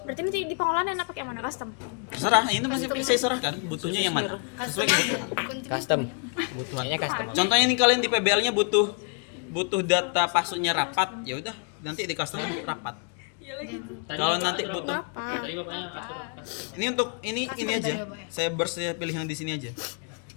Berarti nanti di pengolahan enak pakai yang mana custom? Terserah, ini masih saya serahkan. Butuhnya yang mana? Sesuai kebutuhan. Custom. Kebutuhannya custom. Contohnya ini kalian di PBL-nya butuh data passwordnya rapat, ya udah nanti di custom rapat. Kalau nanti butuh, Tadi bapaknya ini untuk ini aja. Saya pilih yang di sini aja.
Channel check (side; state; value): right; quieter; 37.9 dB